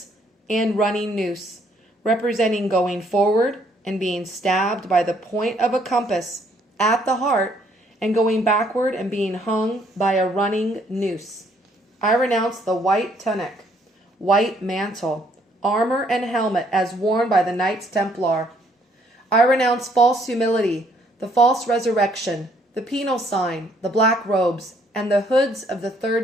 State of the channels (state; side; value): normal; both; correlation 0.66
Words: and running noose, representing going forward and being stabbed by the point of a compass at the heart, and going backward and being hung by a running noose. I renounce the white tunic, white mantle, armor, and helmet as worn by the Knights Templar. I renounce false humility, the false resurrection, the penal sign, the black robes, and the hoods of the